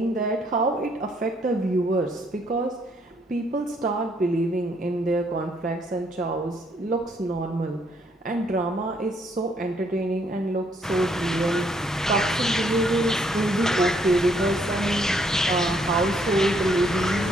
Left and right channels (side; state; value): both; normal; correlation 0.69